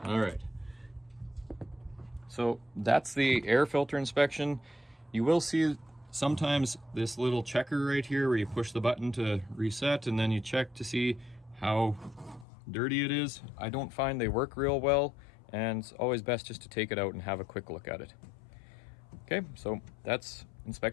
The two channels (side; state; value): right; drops out; at 12.5 s